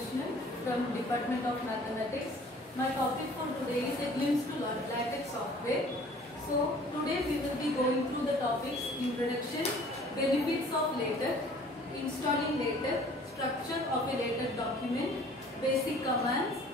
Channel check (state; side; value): normal; both; correlation 0.52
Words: from Department of Mathematics. My topic for today is a glimpse to LaTeX software. So today we will be going through the topics: introduction, benefits of LaTeX, installing LaTeX, structure of a LaTeX document, basic commands,